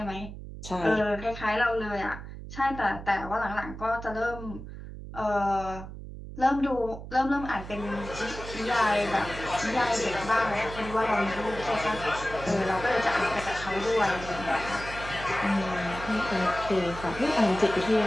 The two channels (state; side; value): noise; right; hum, 11 dB below the sound